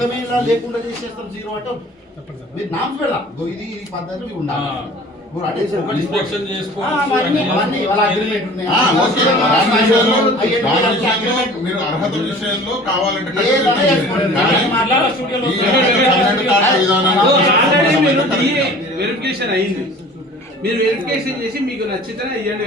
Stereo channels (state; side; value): normal; both; correlation 0.45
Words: గారు లేకుండా చేసేస్తాం జీరో అంటే మీరు నామ్స్ పెడదాం. ఇది పద్ధతి ఉండాలి. మీరు అర్హత విషయంలో కావాలంటే వెరిఫికేషన్ అయింది. మీరు వెరిఫికేషన్ చేసి మీకు నచ్చితే ఇవ్వండి,